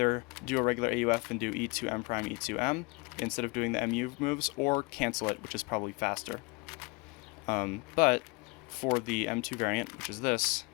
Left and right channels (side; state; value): right; quieter; 27.1 dB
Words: do a regular AUF and do E2M prime E2M instead of doing the MU moves, or cancel it, which is probably faster. But for the M2 variant, which is this,